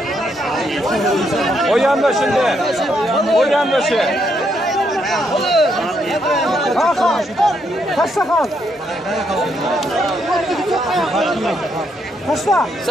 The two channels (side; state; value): both; normal; correlation 0.76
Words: O yanda şimdi. O yanda şey. Hakan. Kaçta kal? Kaçta?